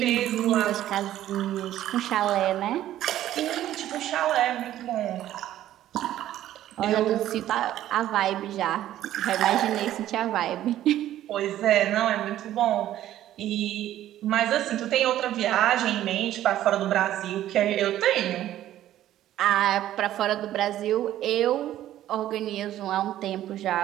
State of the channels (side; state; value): left; quieter; 12.9 dB